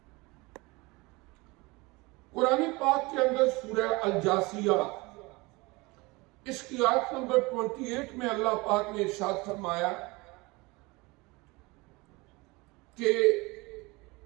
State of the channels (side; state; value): left; quieter; 24.1 dB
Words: قرآن پاک کے اندر سورہ الجاثیہ اس کی آیت نمبر 28 میں اللہ پاک نے ارشاد فرمایا کہ